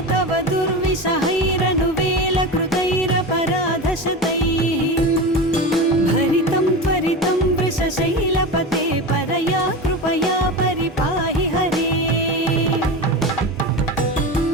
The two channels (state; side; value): normal; both; correlation 0.25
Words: तव दुर्विषहैरनुवेलकृतैरपराधशतैः भरितं त्वरितं वृषशैलपते परया कृपया परिपाहि हरे